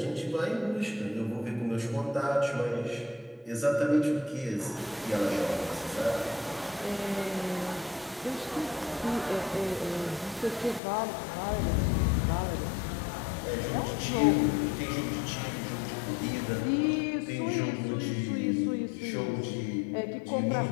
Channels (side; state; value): right; drops out; at 10.8 s